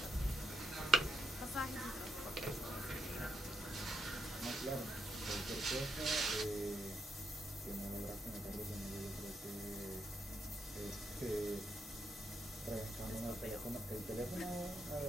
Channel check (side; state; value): both; normal; correlation 0.80